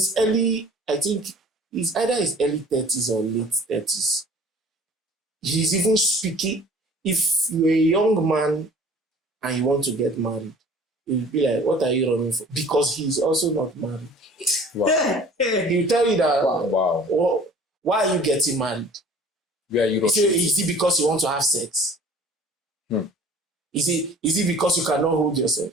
early, I think he's either his early 30s or late 30s. He's even speaking. If you're a young man and you want to get married, he'll be like, what are you running for? Because he's also not married. Wow. He'll tell you that, Wow. oh, why are you getting married? Where are you rushing? Is it because you want to have sex? Is it because you cannot hold yourself?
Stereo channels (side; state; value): both; normal; correlation 0.48